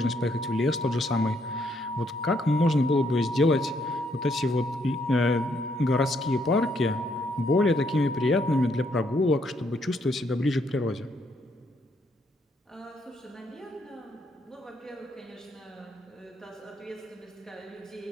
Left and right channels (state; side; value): normal; both; correlation 0.72